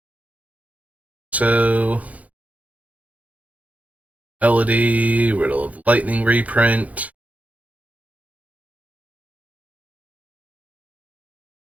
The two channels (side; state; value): left; late; 0.071 ms